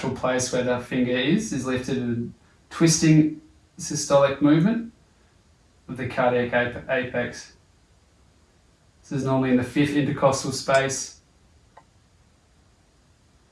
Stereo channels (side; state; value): both; identical; correlation 1.00